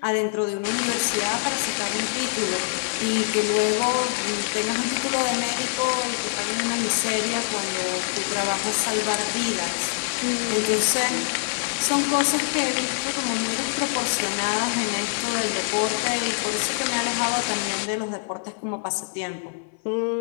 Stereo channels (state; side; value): silent; right; 60 dB below the other